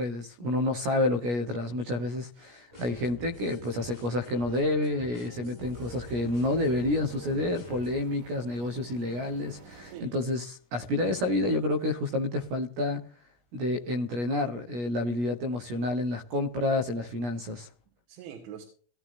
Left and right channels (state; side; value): late; left; 17 ms